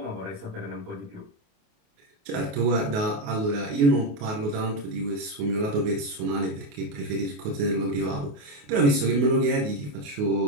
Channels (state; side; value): late; left; 28 ms